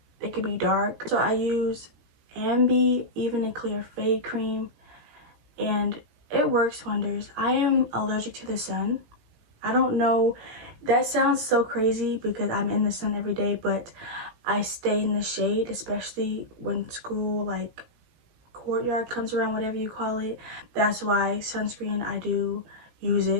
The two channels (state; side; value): late; left; 17 ms